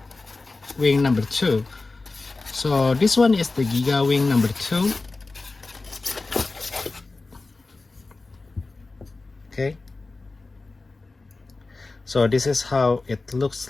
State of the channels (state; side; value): quieter; right; 3.5 dB